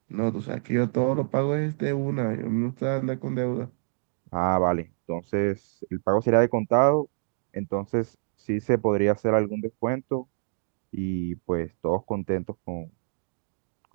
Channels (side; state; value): left; silent; digital silence